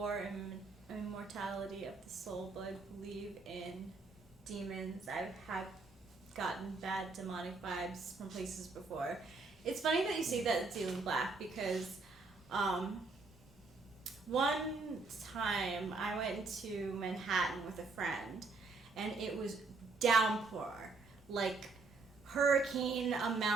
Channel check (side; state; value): left; quieter; 3.9 dB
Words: immortality of the soul, but I believe in demons. I've gotten bad demonic vibes from places before. It's funny that you say that it's Alien Black because one time I went to Manhattan with a friend and it was downpour, hurricane